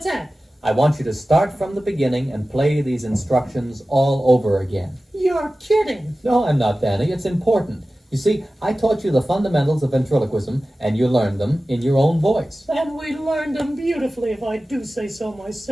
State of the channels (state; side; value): normal; both; correlation 0.96